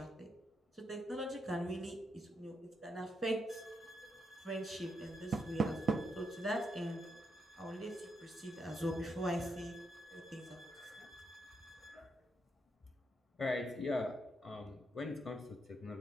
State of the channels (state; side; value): normal; both; correlation 0.80